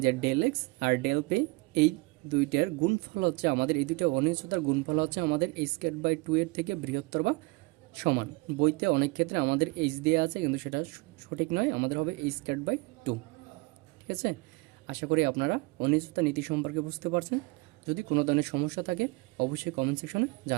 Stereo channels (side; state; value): left; quieter; 25.3 dB